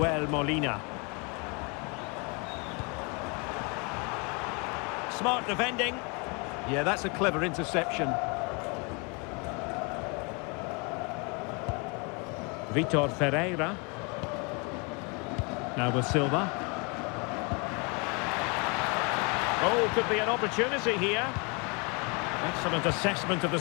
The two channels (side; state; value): right; quieter; 31.9 dB